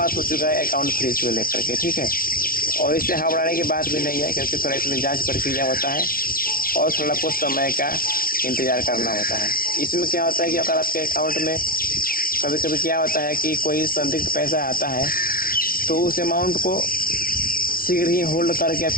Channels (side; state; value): right; late; 0.43 ms